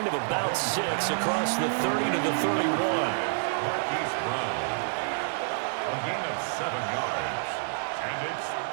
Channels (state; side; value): silent; left; 59 dB below the other